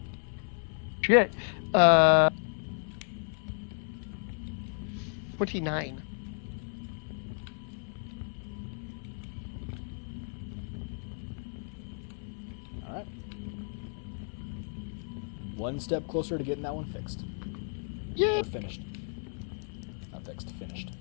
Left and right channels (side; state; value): right; silent; 56 dB below the other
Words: Shit. 29. All right. One step closer to getting that one fixed. Yeah. Or finished. Not fixed, finished.